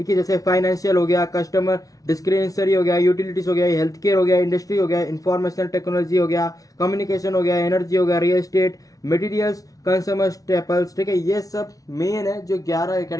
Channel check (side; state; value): right; late; 0.18 ms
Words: है। जैसे फाइनेंशियल हो गया, कस्टमर डिस्क्रिप्शनरी हो गया, यूटिलिटीज हो गया, हेल्थ केयर हो गया, इंडस्ट्री हो गया, इंफॉर्मेशनल टेक्नोलॉजी हो गया, कम्युनिकेशन हो गया, एनर्जी हो गया, real estate, materials, consumer staples, ठीक है। ये सब मेन है जो 11